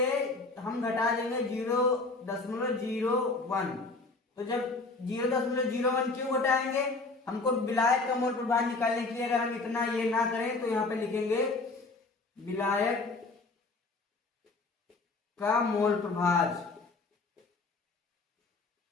हम घटा देंगे 0.01। तो जब 0.01 क्यों घटाएंगे, हमको विलायक का मोल प्रभाव निकालने के लिए अगर हम इतना ये ना करें तो यहाँ पे लिखेंगे विलायक का मोल प्रभाव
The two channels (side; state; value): right; quieter; 3.5 dB